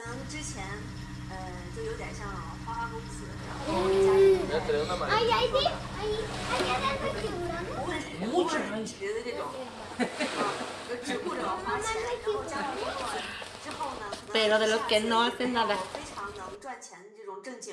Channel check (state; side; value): identical; both; correlation 1.00